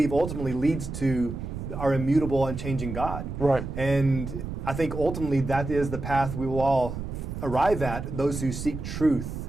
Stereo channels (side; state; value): right; noise; rumble, 7 dB below the sound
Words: ultimately leads to our immutable, unchanging God. And I think ultimately that is the path we will all arrive at, those who seek truth